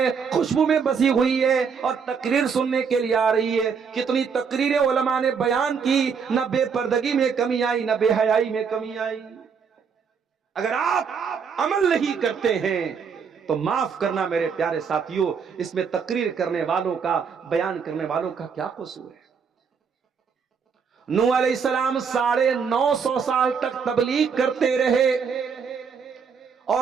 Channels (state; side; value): quieter; left; 6.2 dB